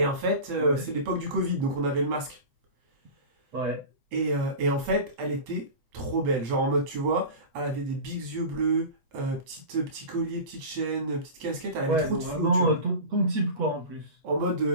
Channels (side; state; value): left; late; 8.5 ms